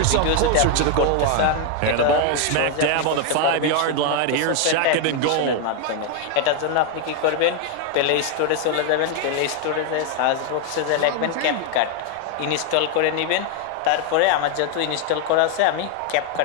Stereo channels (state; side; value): different; both; correlation 0.01